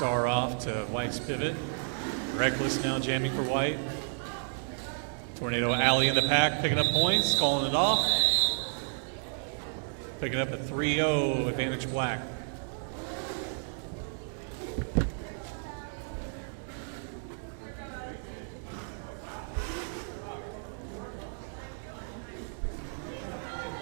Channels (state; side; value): silent; left; 57 dB below the other